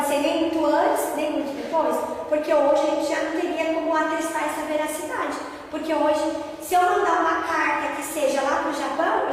ser nem muito antes, nem muito depois, porque hoje a gente já não teria como atestar essa veracidade. Porque hoje, se eu mandar uma carta que seja lá para o Japão,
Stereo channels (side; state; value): both; identical; correlation 1.00